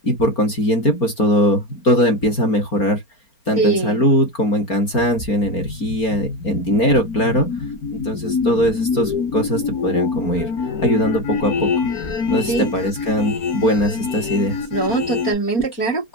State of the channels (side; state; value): right; late; 4.4 ms